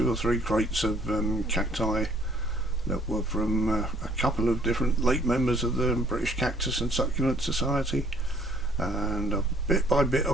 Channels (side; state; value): both; normal; correlation 0.61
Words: or 3 crates of cacti that were from a couple of different late members of the British Cactus and Succulent Society, and bit by bit